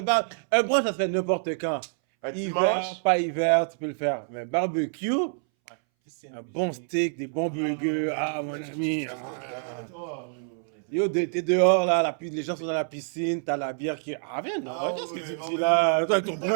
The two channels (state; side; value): silent; left; 60 dB below the other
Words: Un brunch, ça se fait n'importe quand. Un Hiver, dimanche. pas hiver, tu peux le faire. Mais barbecue, Piscine. un bon steak, des bons burgers. Ah, mon ami. Yo, t'es dehors, là, les gens sont dans la piscine, t'as la bière qui... Ah, viens, Ah qu'est-ce que ouais, tu bon, fais là, toi, ton